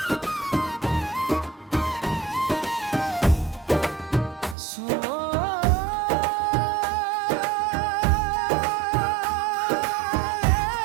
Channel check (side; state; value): left; drops out; at 4.5 s